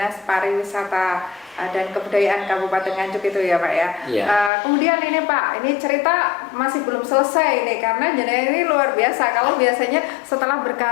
Pariwisata dan Kebudayaan Kabupaten Nganjuk itu ya Pak ya. Ya. Kemudian ini Pak, ini cerita masih belum selesai ini karena jenengan ini luar biasa. Kalau biasanya setelah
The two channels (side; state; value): right; drops out; at 4.5 s